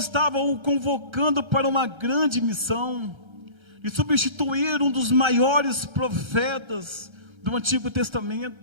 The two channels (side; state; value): left; late; 1.3 ms